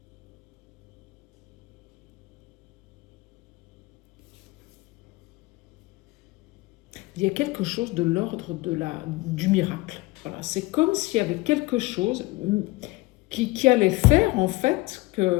il y a quelque chose de l'ordre du miracle. Voilà, c'est comme s'il y avait quelque chose qui allait faire en fait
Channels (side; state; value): right; quieter; 21.5 dB